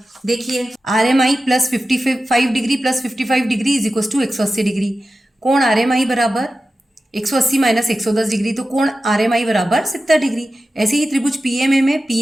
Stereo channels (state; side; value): normal; both; correlation 0.93